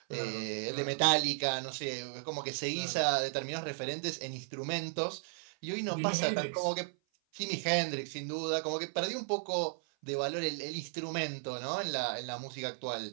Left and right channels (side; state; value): left; silent; 54 dB below the other